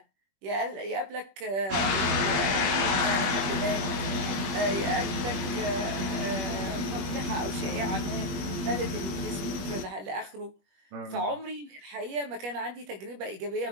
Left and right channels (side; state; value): left; late; 20 ms